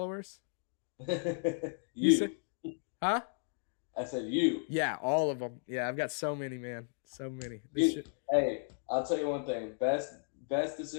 You said, huh? I said you. Yeah, all of them. Yeah, I've got so many, man. So many. Hey, I'll tell you one thing. Best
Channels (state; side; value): silent; right; digital silence